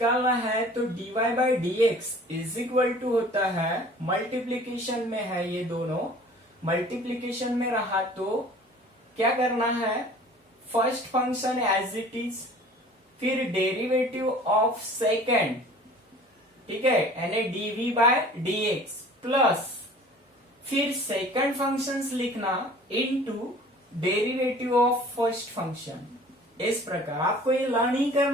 है तो dy by dx is equal to होता है, मल्टीप्लीकेशन में है, ये दोनों मल्टीप्लीकेशन में रहा तो क्या करना है, first function as it is, फिर डेरिवेटिव ऑफ सेकेंड, ठीक है, यानी dv बाय dx प्लस फिर सेकंड फंक्शंस लिखना into derivative of first function. इस प्रकार आपको ये लर्न ही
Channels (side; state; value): both; normal; correlation 0.47